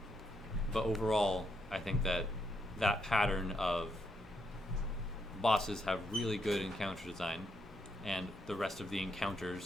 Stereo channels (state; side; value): normal; both; correlation 0.77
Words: But overall, I think that pattern of bosses have really good encounter design, and the rest of the